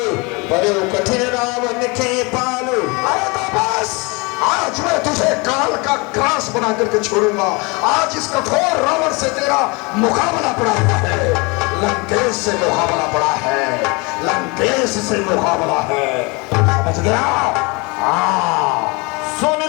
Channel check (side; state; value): right; quieter; 27.9 dB